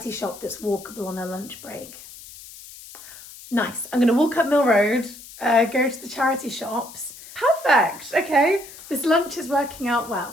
shop that's walkable on a lunch break. Nice. I'm going to walk up Mill Road, go to the charity shops. Perfect. Okay. This lunch is working out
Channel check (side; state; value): left; noise; hiss, 17 dB below the sound